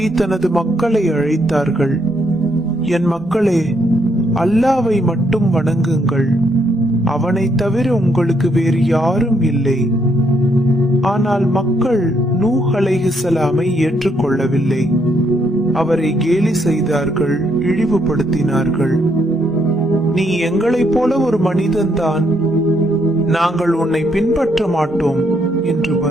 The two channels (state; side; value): normal; both; correlation 0.73